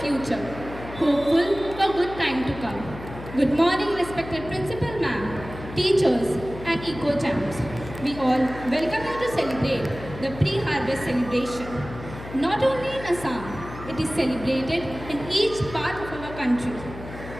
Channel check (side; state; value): left; noise; hum, 13 dB below the sound